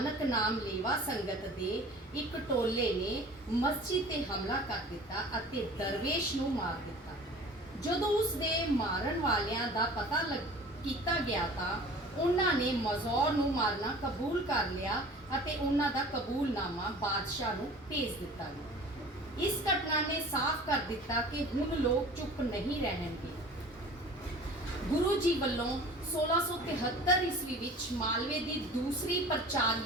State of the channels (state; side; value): normal; both; correlation 0.44